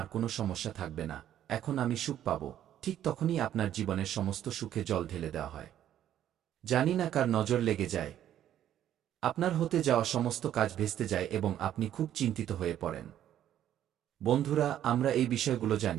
কোনো সমস্যা থাকবে না, এখন আমি সুখ পাব, ঠিক তখনই আপনার জীবনের সমস্ত সুখে জল ঢেলে দেওয়া হয়। জানি না কার নজর লেগে যায়। আপনার হতে যাওয়া সমস্ত কাজ ভেস্তে যায় এবং আপনি খুব চিন্তিত হয়ে পড়েন। বন্ধুরা, আমরা এই বিষয়গুলো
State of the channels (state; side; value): quieter; left; 11.2 dB